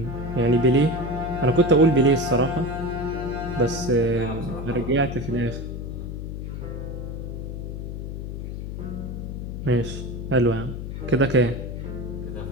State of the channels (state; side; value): noise; left; hum, 6 dB below the sound